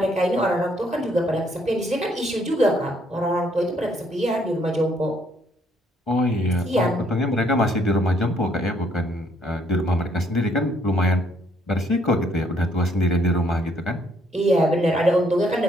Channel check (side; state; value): both; normal; correlation 0.68